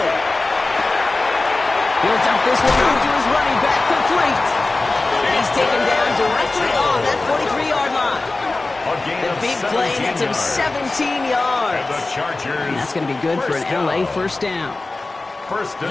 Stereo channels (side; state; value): right; quieter; 3.3 dB